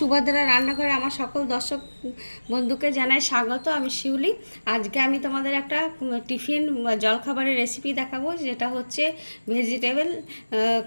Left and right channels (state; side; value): inverted; both; correlation -1.00